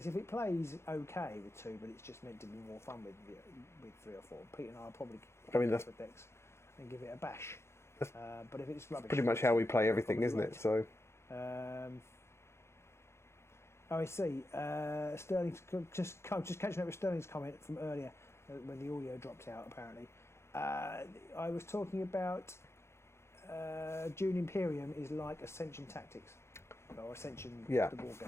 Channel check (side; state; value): right; late; 0.13 ms